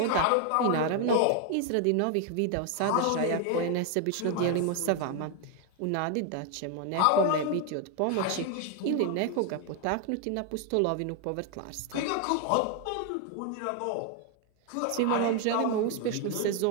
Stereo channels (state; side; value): different; both; correlation 0.01